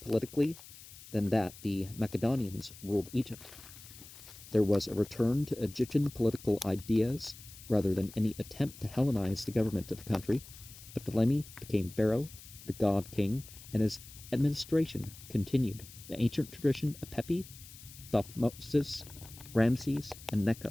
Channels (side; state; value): left; noise; hiss, 18 dB below the sound